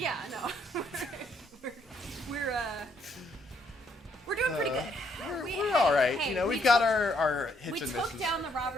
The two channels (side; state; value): both; normal; correlation 0.71